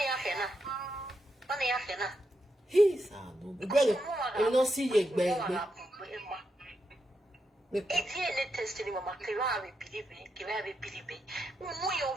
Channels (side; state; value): both; normal; correlation 0.84